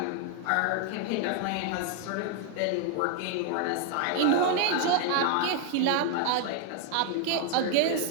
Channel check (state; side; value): different; both; correlation 0.00